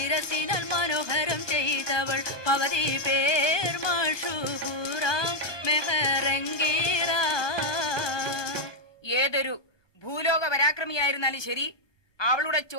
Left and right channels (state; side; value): late; right; 1.2 ms